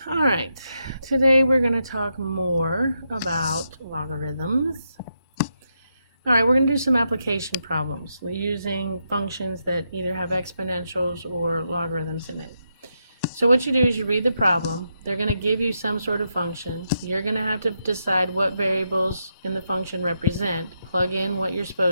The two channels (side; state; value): both; inverted; correlation -0.82